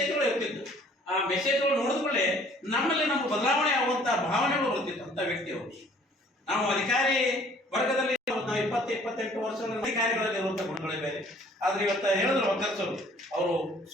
ಇರ್ತಿದ್ದು. ಆ ಮೆಸೇಜ್ಗಳು ನೋಡಿದ್ಕೊಳ್ಳೆ ನಮ್ಮಲ್ಲಿ ನಮ್ಗೆ ಬದಲಾವಣೆ ಆಗುವಂತ ಭಾವನೆಗಳು ಬರ್ತಿತ್ತು ಅಂತ ವ್ಯಕ್ತಿಯವರು. ನಾವು ಅಧಿಕಾರಿ ವರ್ಗದಲ್ಲಿ 20-28 ವರ್ಷಗಳ ಅಧಿಕಾರಿಗಳಲ್ಲಿ ಇರುವಂತ ಗುಣಗಳೇ ಬೇರೆ. ಆದ್ರೆ ಇವತ್ತ ಹೇಳಿದ್ರು ಒಕ್ಕರ್ಸರು ಅವರು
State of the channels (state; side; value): normal; both; correlation 0.56